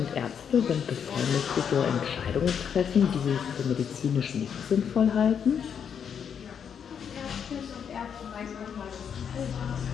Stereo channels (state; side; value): quieter; right; 7.6 dB